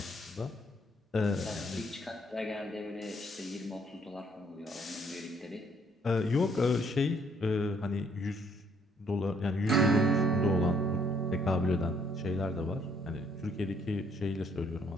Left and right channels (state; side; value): normal; both; correlation 0.67